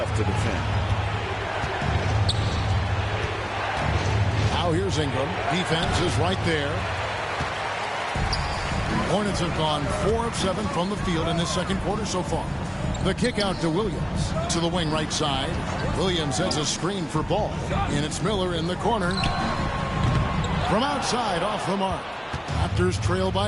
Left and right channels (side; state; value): both; identical; correlation 1.00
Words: to defend. Now here's Ingram. Defense is right there. Hornets have gone 4 of 7 from the field in this second quarter so far. The kick out to Williams. To the wing right side. Williams has a screen for Ball. And it's Miller in the corner. From outside, off the mark. Raptors trail